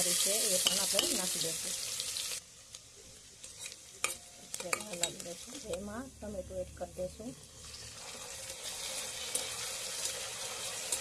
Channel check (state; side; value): identical; both; correlation 1.00